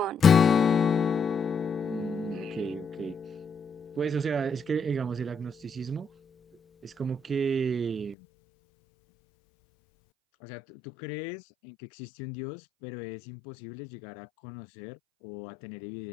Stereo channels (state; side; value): drops out; right; at 8.2 s